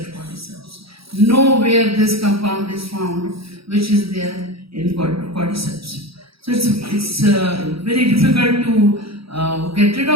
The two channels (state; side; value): late; left; 0.76 ms